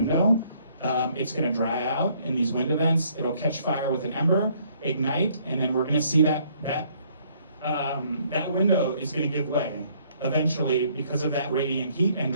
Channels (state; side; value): inverted; both; correlation -0.65